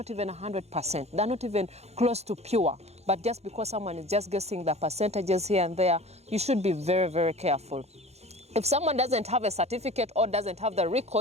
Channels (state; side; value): late; left; 0.31 ms